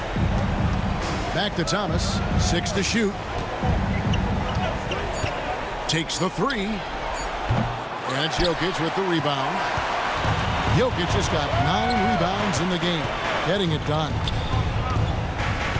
Back to Thomas. 6 to shoot. Takes the 3. And it's Jokic with the rebound. Jokic just got 9 rebounds in the game, getting it done.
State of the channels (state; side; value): identical; both; correlation 1.00